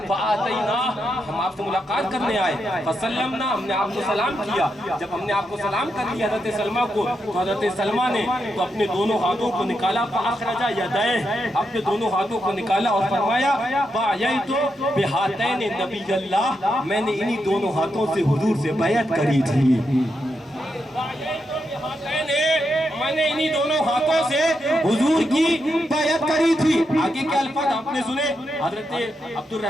فآتیناہ، ہم آپ سے ملاقات کرنے آئے، فسلمنا، ہم نے آپ کو سلام کیا۔ جب ہم نے آپ کو سلام کر لیا حضرت سلمہ کو، تو حضرت سلمہ نے تو اپنے دونوں ہاتھوں کو نکالا، فاخرج یدیہ، اپنے دونوں ہاتھوں کو نکالا اور فرمایا بایعت بہاتین نبی اللہ، میں نے انہی دونوں ہاتھوں سے حضور سے بیعت کری تھی۔ میں نے انہی دونوں ہاتھوں سے حضور کی بیعت کری تھی۔ آگے کے الفاظ آپ نے سنے، حضرت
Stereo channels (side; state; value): both; normal; correlation 0.84